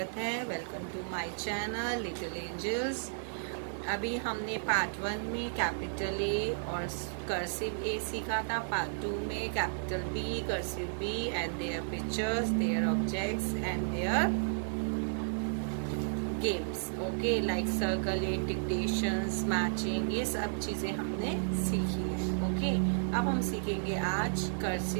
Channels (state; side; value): silent; left; 55 dB below the other